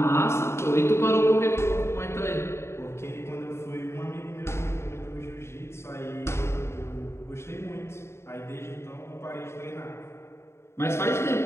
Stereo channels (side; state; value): right; late; 0.13 ms